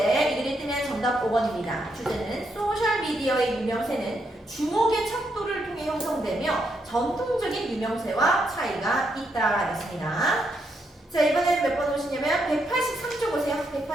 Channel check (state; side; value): normal; both; correlation 0.79